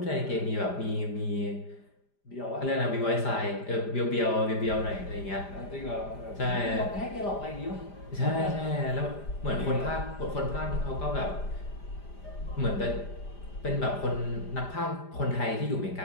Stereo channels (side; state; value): right; late; 5.0 ms